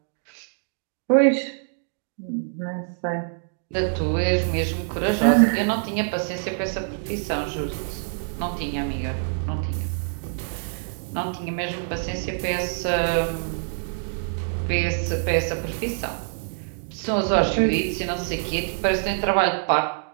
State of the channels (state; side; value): silent; left; digital silence